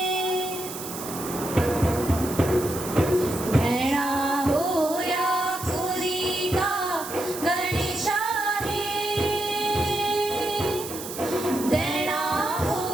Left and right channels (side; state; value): right; noise; hiss, 10 dB below the sound